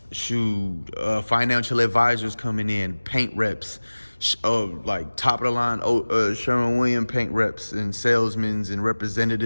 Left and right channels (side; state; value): both; inverted; correlation -1.00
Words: financial advisors coming in, paint reps, like top of the line Sherwin-Williams paint reps and salesmen and